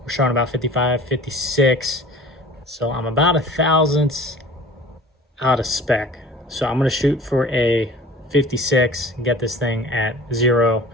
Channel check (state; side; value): normal; both; correlation 0.44